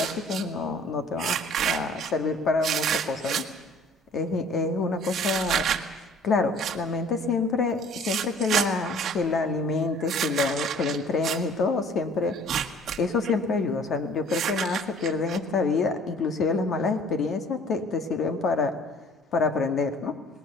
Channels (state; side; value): normal; both; correlation 0.52